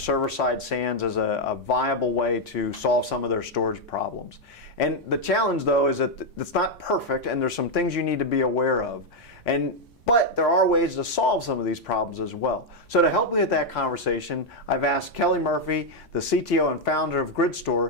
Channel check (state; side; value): normal; both; correlation 0.01